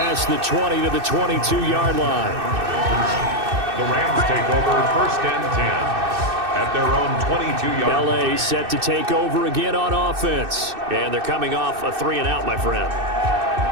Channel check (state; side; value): late; left; 2.6 ms